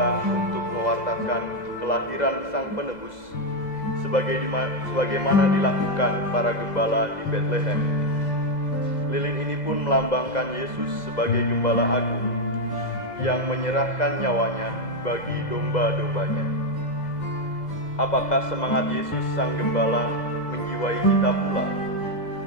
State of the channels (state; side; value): late; right; 2.0 ms